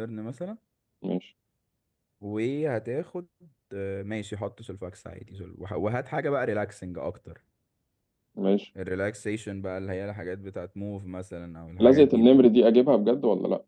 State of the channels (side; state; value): both; identical; correlation 1.00